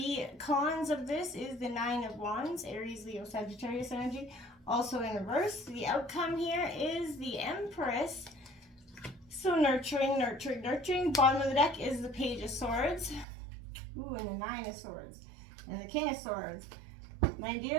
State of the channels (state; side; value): drops out; left; at 13.2 s